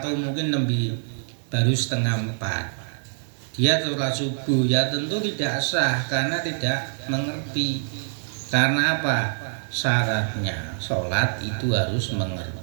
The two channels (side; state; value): left; silent; digital silence